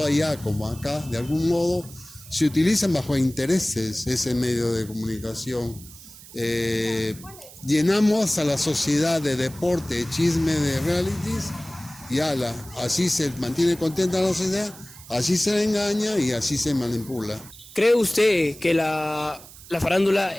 allá como acá, de algún modo, se utilizan bajo intereses ese medio de comunicación. Llenamos a la sociedad de deporte, de chisme, de realities, y así se mantiene contenta la sociedad, así se le engaña y así se manipula. ¿Cree usted que la farándula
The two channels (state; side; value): noise; right; hiss, 19 dB below the sound